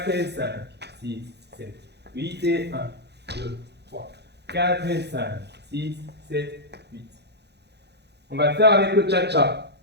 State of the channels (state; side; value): late; left; 0.49 ms